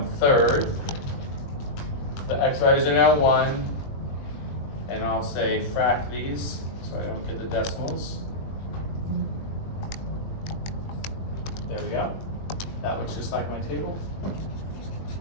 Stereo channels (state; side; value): late; right; 21 ms